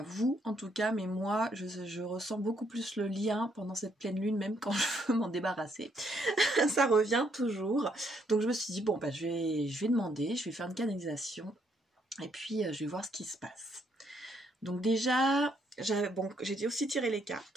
vous en tout cas, mais moi je ressens beaucoup plus le lien pendant cette pleine lune, même quand je veux m'en débarrasser. Ça revient toujours. Donc je me suis dit bon bah je vais demander, je vais faire une canalisation. Et puis, je vais voir ce qui se passe. Donc déjà, j'ai aussi tiré les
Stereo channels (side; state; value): both; normal; correlation 0.72